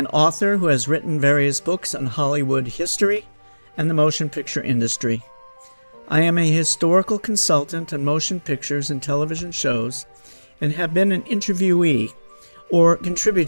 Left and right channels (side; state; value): both; inverted; correlation -1.00